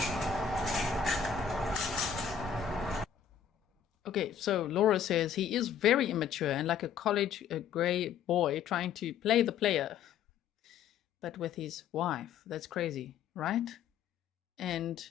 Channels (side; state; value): right; quieter; 7.8 dB